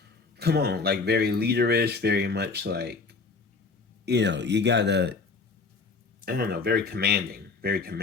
come on, like very leaderish, very much like, you know, you gotta, I don't know, very commanding. Very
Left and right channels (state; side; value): quieter; right; 4.3 dB